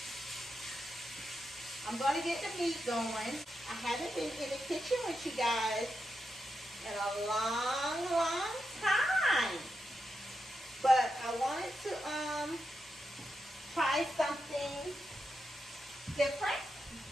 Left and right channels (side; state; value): both; normal; correlation 0.86